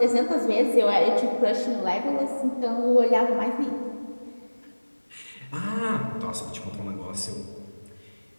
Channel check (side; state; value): both; inverted; correlation -1.00